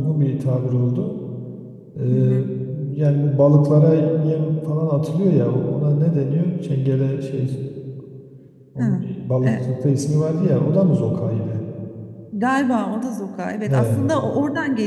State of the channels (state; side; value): identical; both; correlation 1.00